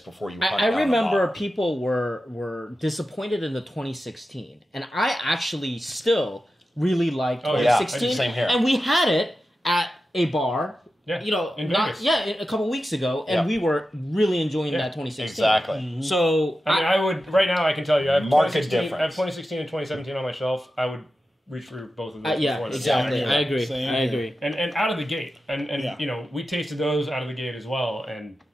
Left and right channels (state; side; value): normal; both; correlation 0.92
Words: you. I remember people were disappointed in the 2016, and I actually still really liked 2016. Yeah, same here. And we had it at a bar. Yeah, in not Vegas. a couple weeks ago, and we were really enjoying that 2016. Exactly. Mm-hmm. So I mean, I would right now. I can tell you, I have Market 2016. difference. I have 2016 and 2017 on my shelf. I would reach for both of those. yeah, before this. exactly. Yeah, I agree. same I here. agree. And out of the gate, and Yeah. we tasted those out of the gate as well, and